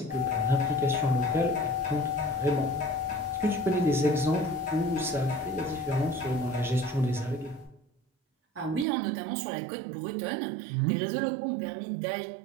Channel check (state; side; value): drops out; left; at 8.8 s